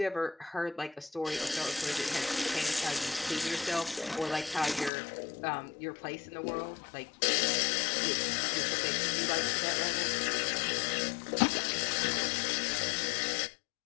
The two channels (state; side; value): drops out; right; at 4.9 s